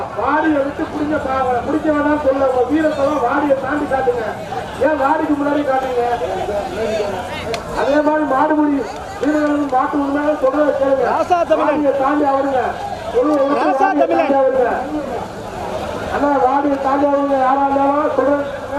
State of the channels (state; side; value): identical; both; correlation 1.00